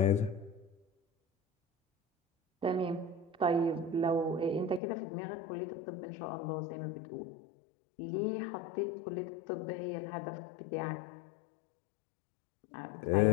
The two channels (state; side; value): drops out; right; at 4.8 s